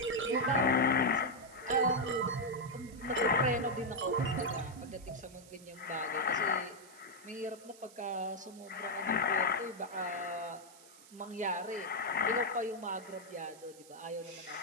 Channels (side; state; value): right; noise; hiss, 21 dB below the sound